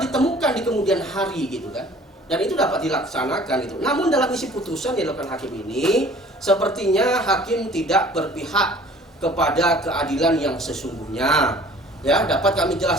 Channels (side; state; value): both; normal; correlation 0.50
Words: ditemukan di kemudian hari gitu kan, dan itu dapat dilaksanakan itu. Namun dalam isi putusan yang dilakukan hakim ini sepertinya hakim tidak berpihak kepada keadilan yang sesungguhnya ya. Dapat kami